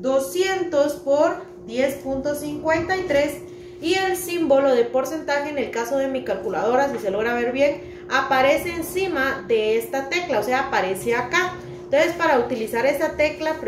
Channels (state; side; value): identical; both; correlation 1.00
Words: por 10.53 y el símbolo de porcentaje, en el caso de mi calculadora, si se logra ver bien, aparece encima de esta tecla, o sea, aparece acá. Entonces, para utilizar esa tecla